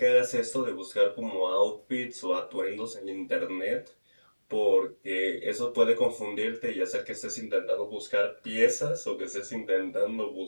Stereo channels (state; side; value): inverted; both; correlation -1.00